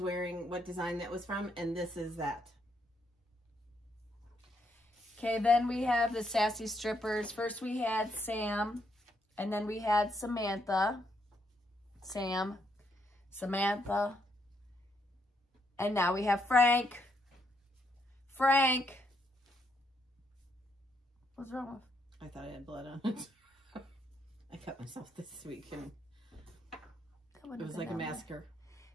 what design that was from, and this is that. Okay, then we have the Sassy Strippers. First we had Sam, and then we had Samantha. Sam, Samantha, and now we have Frank. Frank. What's wrong with? I thought I had blood on it. I cut myself this week, and it was like a massacre.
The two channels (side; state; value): both; normal; correlation 0.76